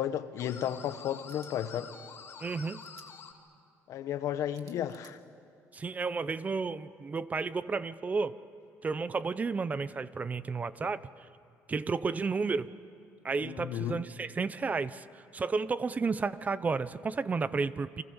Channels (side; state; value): both; normal; correlation 0.73